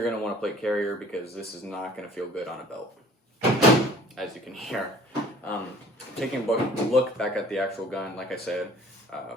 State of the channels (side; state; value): both; normal; correlation 0.51